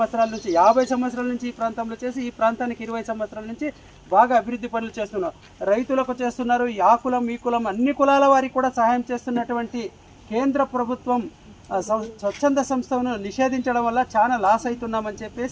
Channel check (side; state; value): both; identical; correlation 1.00